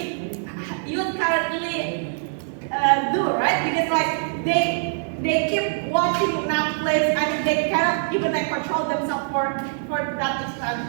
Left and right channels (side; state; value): left; silent; digital silence